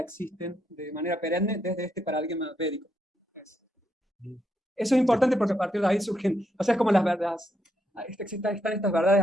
de manera perenne desde este paradigma védico. Eso es importante porque a partir de ahí surgen, o sea, es como las verdades, están estas verdades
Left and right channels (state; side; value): normal; both; correlation 0.79